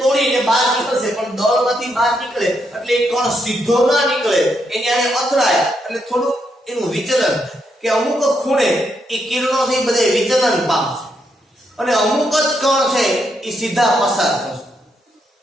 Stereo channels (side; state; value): both; normal; correlation 0.79